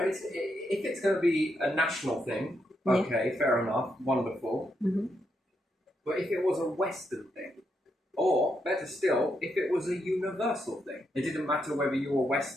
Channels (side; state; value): both; normal; correlation 0.81